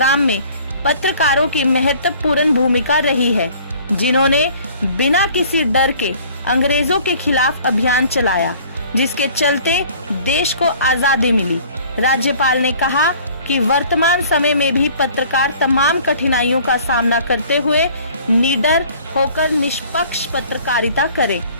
में पत्रकारों की महत्वपूर्ण भूमिका रही है, जिन्होंने बिना किसी डर के अंग्रेजों के खिलाफ अभियान चलाया, जिसके चलते देश को आजादी मिली। राज्यपाल ने कहा कि वर्तमान समय में भी पत्रकार तमाम कठिनाइयों का सामना करते हुए निडर होकर निष्पक्ष पत्रकारिता करें।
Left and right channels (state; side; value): inverted; both; correlation -0.52